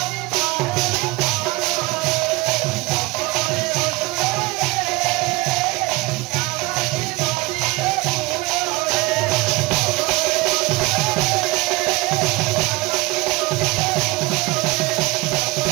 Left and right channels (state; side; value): quieter; left; 21.6 dB